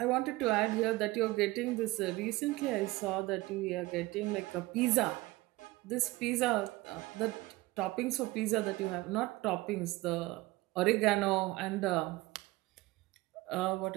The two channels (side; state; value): left; quieter; 20.2 dB